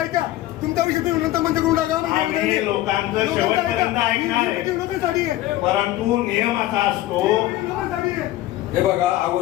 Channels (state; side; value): quieter; right; 15.3 dB